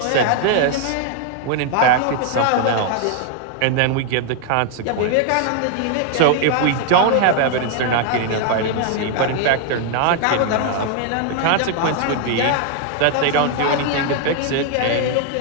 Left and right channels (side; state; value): both; different; correlation 0.00